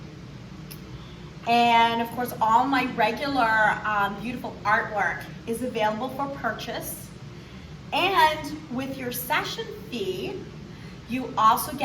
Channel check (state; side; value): identical; both; correlation 1.00